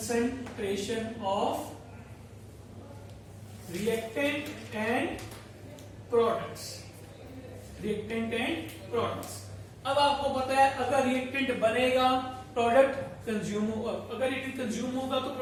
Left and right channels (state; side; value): identical; both; correlation 1.00